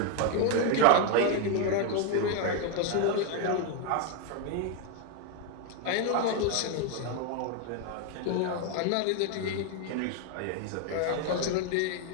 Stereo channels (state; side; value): different; both; correlation 0.01